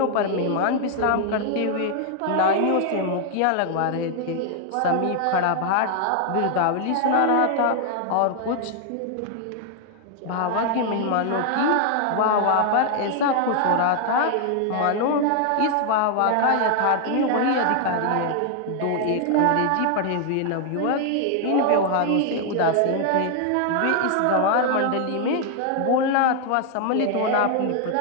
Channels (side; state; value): both; different; correlation 0.00